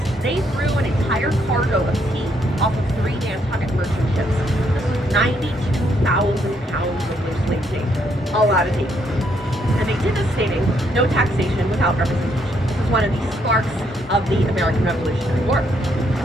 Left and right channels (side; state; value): both; normal; correlation 0.73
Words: they threw an entire cargo of tea off of 3 Nantucket merchant ships. This was 92,000 pounds of loosely tea. A lot of tea. And they did this stating, no taxation without representation. This is one of the sparks of the American Revolutionary War.